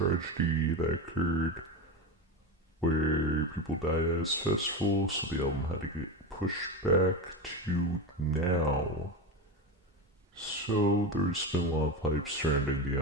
that occurred where people died at his festival, so the album had to get pushed back to now. So there's been a lot of hype surrounding the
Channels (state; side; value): normal; both; correlation 0.20